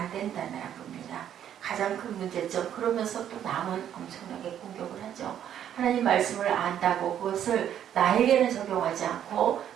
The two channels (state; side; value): quieter; left; 10.0 dB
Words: 된다는 겁니다. 가장 큰 문제점 그러면서 또 남은 엄청나게 공격을 하죠. 하나님 말씀을 안다고 그것을 나에게는 적용하지 않고